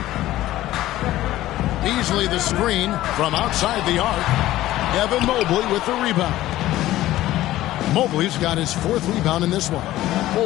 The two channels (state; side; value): quieter; right; 15.2 dB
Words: Beasley the screen from outside the arc. Evan Mobley with the rebound. Mobley's got his 4th rebound in this one.